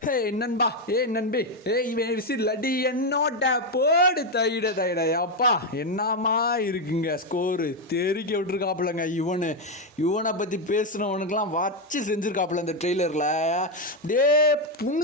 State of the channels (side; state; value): both; normal; correlation 0.05